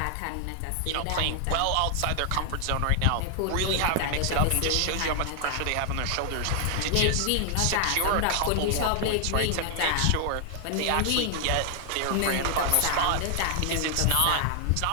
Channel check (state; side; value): different; both; correlation 0.00